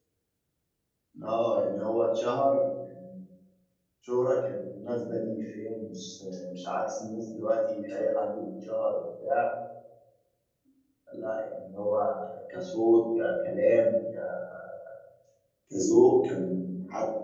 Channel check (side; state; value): both; identical; correlation 1.00